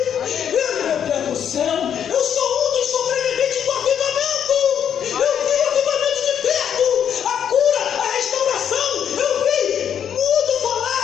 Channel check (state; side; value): quieter; right; 8.7 dB